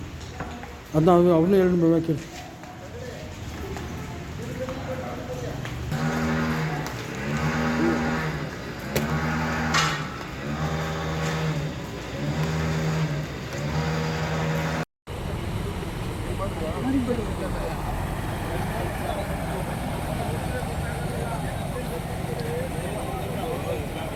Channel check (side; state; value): both; identical; correlation 1.00